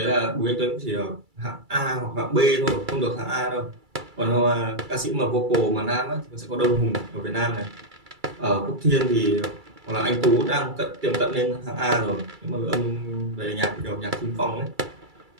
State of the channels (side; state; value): left; late; 2.3 ms